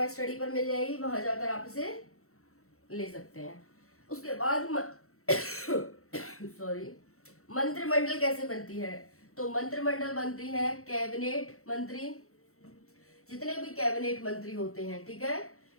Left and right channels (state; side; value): late; right; 0.64 ms